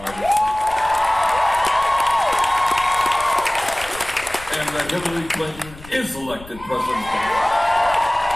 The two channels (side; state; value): left; noise; rumble, 18 dB below the sound